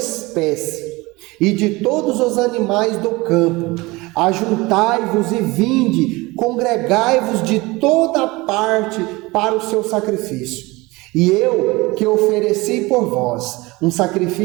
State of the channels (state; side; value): quieter; left; 22.4 dB